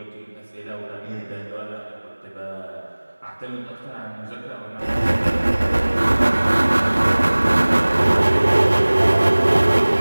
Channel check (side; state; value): both; inverted; correlation -1.00